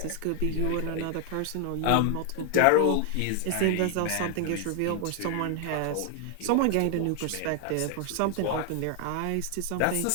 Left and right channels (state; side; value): different; both; correlation 0.00